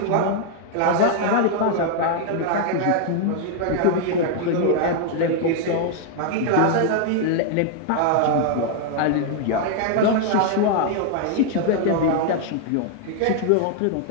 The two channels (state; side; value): different; both; correlation 0.00